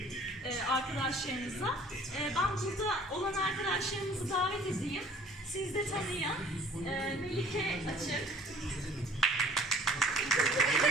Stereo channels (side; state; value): both; normal; correlation 0.51